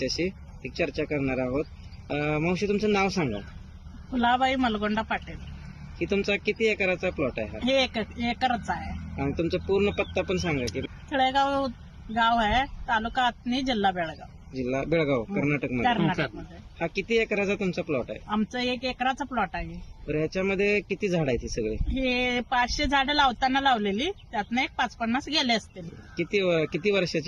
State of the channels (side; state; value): both; identical; correlation 1.00